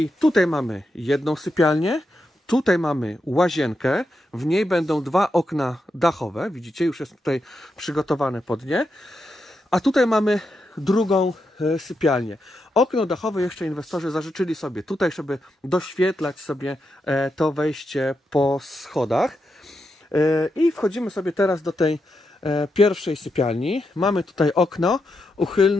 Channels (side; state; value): both; normal; correlation 0.85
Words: tutaj mamy jedną sypialnię, tutaj mamy łazienkę, w niej będą 2 okna dachowe, widzicie, już jest tutaj przygotowane pod nie. A tutaj mamy drugą sypialnię. Okno dachowe jeszcze inwestorzy zażyczyli sobie tutaj, żeby doświetlać sobie to wejście po schodach. I wchodzimy sobie teraz do tej pierwszej sypialni. Mamy tutaj okno